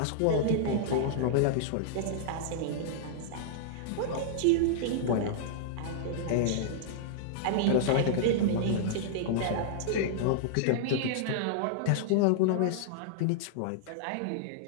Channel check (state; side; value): different; both; correlation -0.02